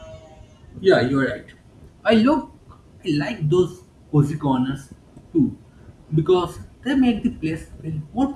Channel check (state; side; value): identical; both; correlation 1.00